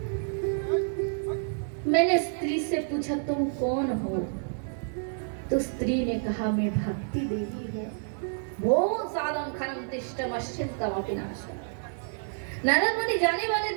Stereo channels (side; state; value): left; silent; digital silence